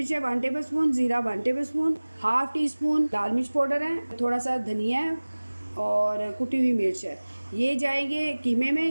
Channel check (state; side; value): inverted; both; correlation -1.00